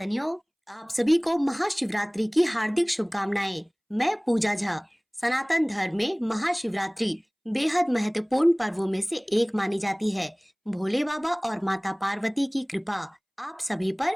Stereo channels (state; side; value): identical; both; correlation 1.00